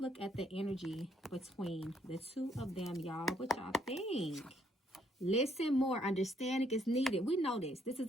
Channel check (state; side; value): normal; both; correlation 0.70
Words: look at the energy between the two of them, y'all. What y'all think? Listen more. Understanding is needed. We know this. This is